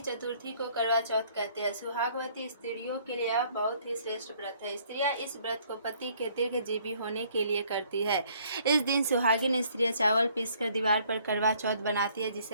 चतुर्थी को करवा चौथ कहते हैं। सुहागवती स्त्रियों के लिए यह बहुत ही श्रेष्ठ व्रत है। स्त्रियां इस व्रत को पति के दीर्घजीवी होने के लिए करती है। इस दिन सुहागिन स्त्रियां चावल पीसकर दीवार पर करवा चौथ बनाती है,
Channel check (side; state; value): both; inverted; correlation -0.61